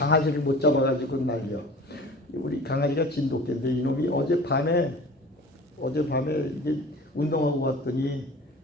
못 잡아가지고 날려. 우리 강아지가 진돗개인데 이놈이 어젯밤에 이게 운동하고 왔더니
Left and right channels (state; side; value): normal; both; correlation 0.41